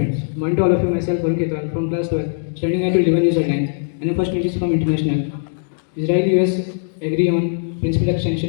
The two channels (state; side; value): silent; right; digital silence